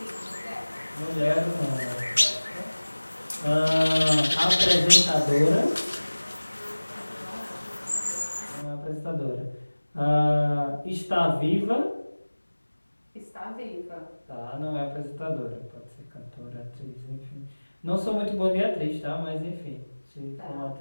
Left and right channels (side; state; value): both; inverted; correlation -1.00